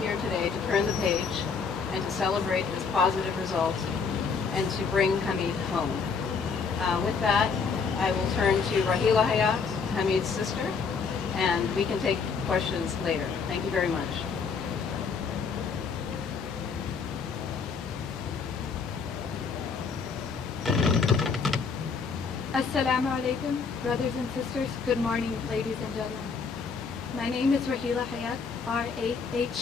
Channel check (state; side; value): quieter; right; 5.4 dB